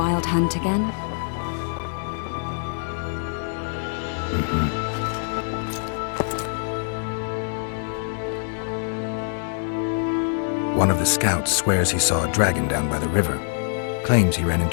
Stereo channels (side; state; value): right; silent; digital silence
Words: Hunt again? One of the scouts swears he saw a dragon down by the river. Claims he ran